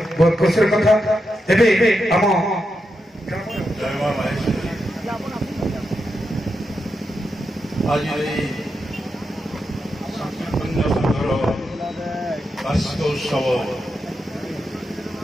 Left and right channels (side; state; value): both; normal; correlation 0.86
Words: बहुत खुशी कथा एबे हम आज ये संकीर्तन्य संघर वार्षिक उत्सव